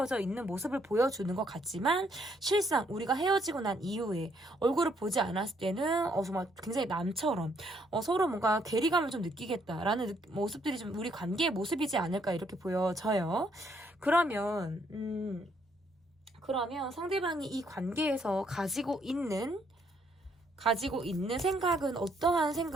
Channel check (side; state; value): both; normal; correlation 0.70